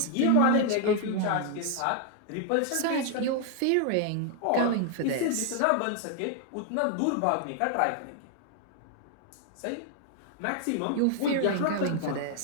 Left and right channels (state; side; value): different; both; correlation 0.00